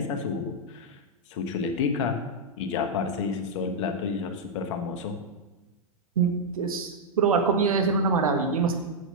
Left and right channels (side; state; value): both; normal; correlation -0.03